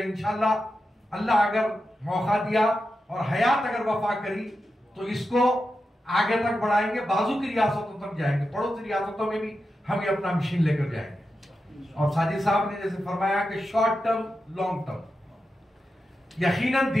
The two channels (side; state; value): both; normal; correlation 0.89